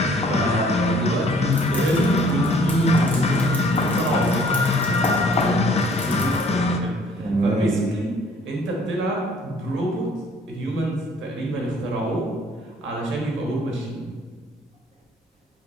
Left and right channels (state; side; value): normal; both; correlation 0.58